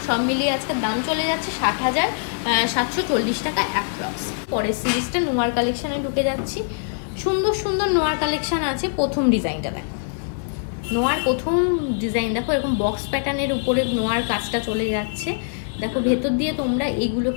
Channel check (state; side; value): silent; right; 60 dB below the other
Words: সব মিলিয়ে আজকের দাম চলে যাচ্ছে 60,740 টাকা অ্যাপ্রক্স। পরের সিরিজটা নোয়ার কালেকশনে ঢুকে যাচ্ছি। সুন্দর সুন্দর নোয়ার কালেকশন আছে। প্রথম ডিজাইনটা দেখো, নোয়ার প্রথম ডিজাইন দেখো, এরকম বক্স প্যাটার্নের উপরে নোয়ার কাজটা চলে যাচ্ছে। দেখো ভেতর দিয়ে তোমরা এগুলো